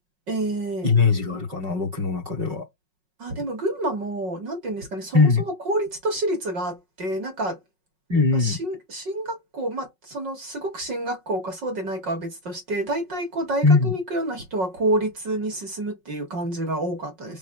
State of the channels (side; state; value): left; late; 5.4 ms